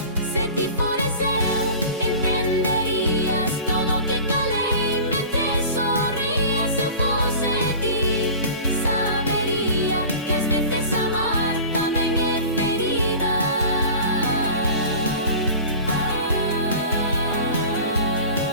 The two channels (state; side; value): inverted; both; correlation -0.38